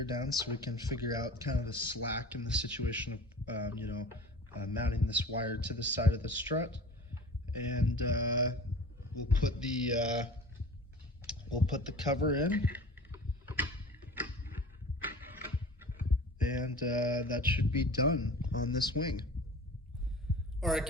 down so we can figure out kind of the slack in the situation of, mounting this wire to the side of the strut. And we'll put the cover in. And that should be done on this wing. All right,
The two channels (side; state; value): both; normal; correlation 0.39